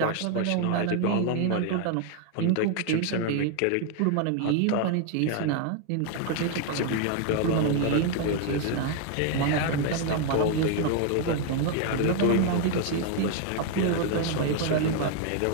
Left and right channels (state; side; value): different; both; correlation 0.00